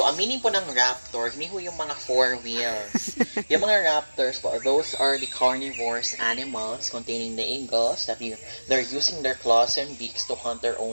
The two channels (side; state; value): both; inverted; correlation -1.00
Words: ang meaning po ng raptor, hindi po yung mga 4 wheels. Yung mga raptors po, those are the carnivorous animals containing the eagles that they're using their claws and beaks to hunt their